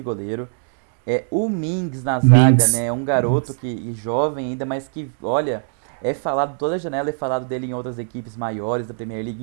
goleiro, o Mings na zaga, né, é um garoto que jovem ainda, mas que, olha, toda a janela é falado dele em outras equipes maiores da Premier League,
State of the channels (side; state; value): left; silent; digital silence